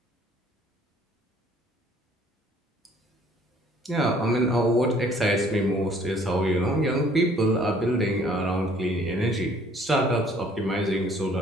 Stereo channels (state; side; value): normal; both; correlation 0.58